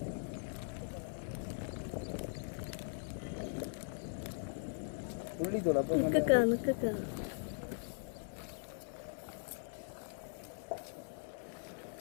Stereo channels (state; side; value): silent; right; 51 dB below the other